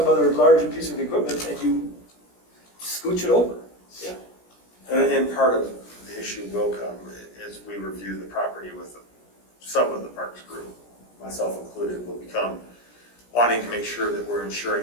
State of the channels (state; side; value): late; right; 17 ms